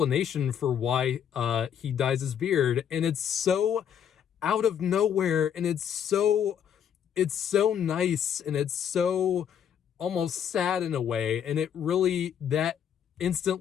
for why he dyes his beard, and it's so out of nowhere, and it's so nice, and it's so almost sad in a way, and that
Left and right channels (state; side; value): quieter; right; 8.7 dB